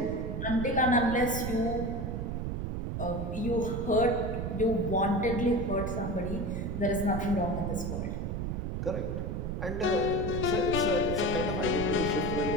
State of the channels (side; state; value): right; noise; rumble, 3 dB below the sound